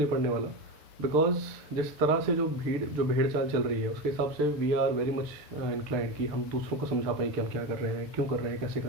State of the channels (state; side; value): late; left; 6.7 ms